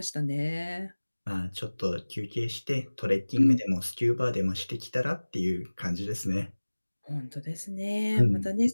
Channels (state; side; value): inverted; both; correlation -1.00